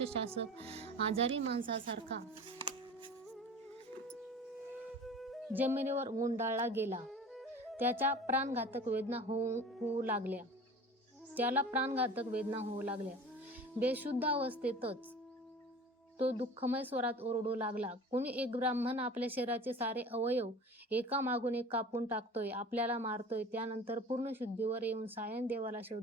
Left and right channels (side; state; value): both; normal; correlation 0.39